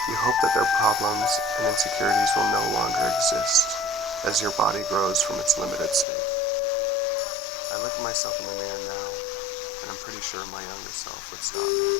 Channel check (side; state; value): right; drops out; at 6.1 s